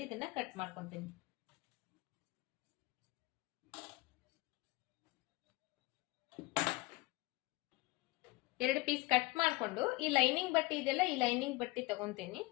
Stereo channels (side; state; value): right; quieter; 22.6 dB